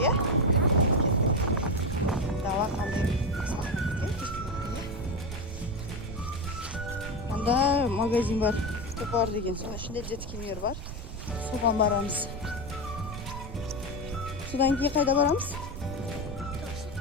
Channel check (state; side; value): noise; right; rumble, 9 dB below the sound